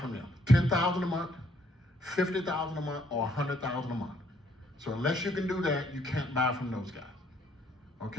from them. $10,000 a month, $50,000 a month, or $100,000 a month. So unless you can do that, you can't buy from those guys,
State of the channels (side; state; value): both; normal; correlation 0.67